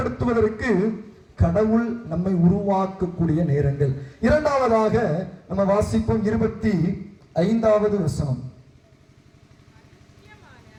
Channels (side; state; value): both; identical; correlation 1.00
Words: கடவுள் நம்மை உருவாக்கக்கூடிய நேரங்கள். இரண்டாவதாக நம்ம வாசிப்போம் 25வது வசனம்.